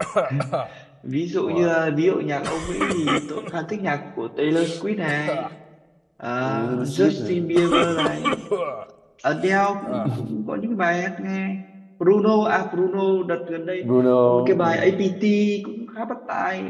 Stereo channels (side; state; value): both; identical; correlation 1.00